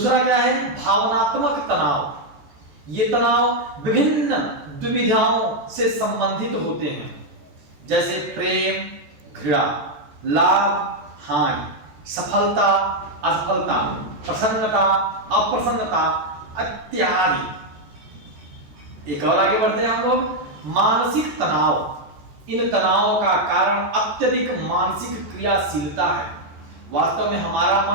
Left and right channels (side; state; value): left; late; 15 ms